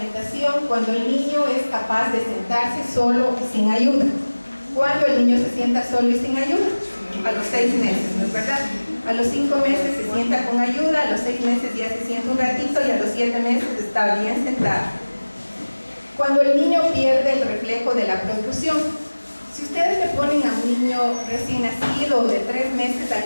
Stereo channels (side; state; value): both; inverted; correlation -1.00